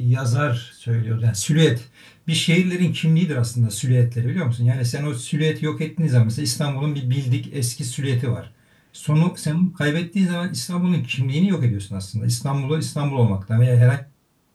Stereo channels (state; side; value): identical; both; correlation 1.00